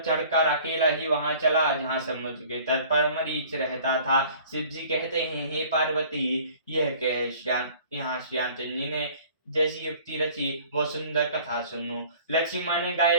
अकेला ही वहां चला, जहां समुद्र के तट पर मरीच रहता था। शिव जी कहते हैं, हे पार्वती, यह कह यहाँ श्यामचंद्र जी ने जैसी युक्ति रची, वो सुंदर कथा सुनो। लक्ष्मण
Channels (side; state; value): both; inverted; correlation -0.50